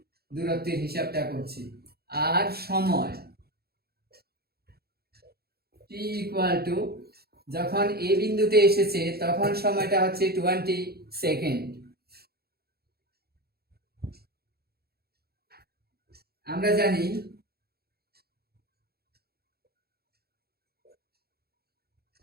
দূরত্বের হিসাবটা করছি। আর সময় t = যখন এ বিন্দুতে এসেছে তখন সময়টা হচ্ছে 20 সেকেন্ড। আমরা জানি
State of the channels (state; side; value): late; left; 0.46 ms